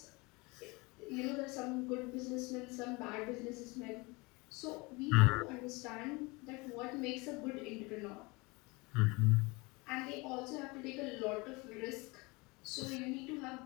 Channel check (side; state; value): right; quieter; 25.8 dB